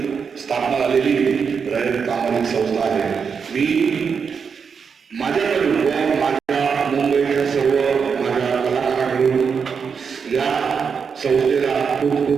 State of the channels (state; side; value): quieter; left; 6.1 dB